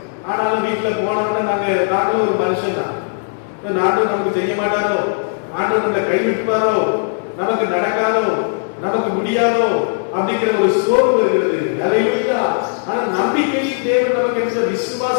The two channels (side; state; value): right; silent; digital silence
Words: ஆனாலும் வீட்டுல போனோம்னா நாங்களும் ஒரு மனுஷன் தான். நாட்டும் நமக்கு செய்ய மாட்டாரோ, ஆண்டவர் நம்மளை கைவிட்டுவாரோ, நமக்கு நடக்காதோ, நமக்கு முடியாதோ அப்படிங்கிற ஒரு சோர்வு வருகிறது. ஹல்லேலூயா. ஆனா நம்பிக்கையின் தேவன் நமக்கு என்ற